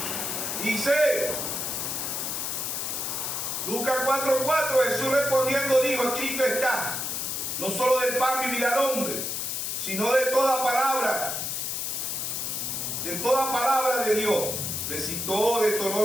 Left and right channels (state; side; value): noise; left; hiss, 2 dB below the sound